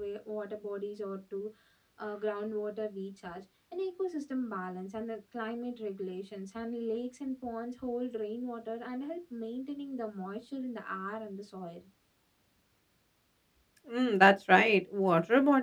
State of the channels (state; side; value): identical; both; correlation 1.00